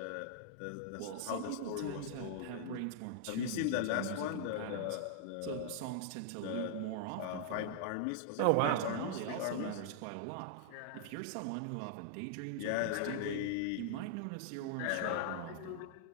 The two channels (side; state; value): both; different; correlation -0.01